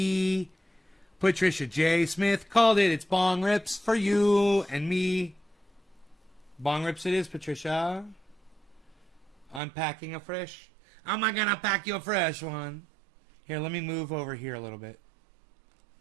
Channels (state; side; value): drops out; left; at 9.6 s